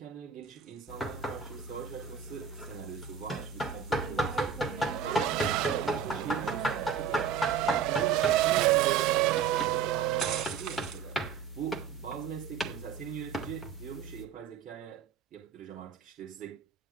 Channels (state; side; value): quieter; left; 7.2 dB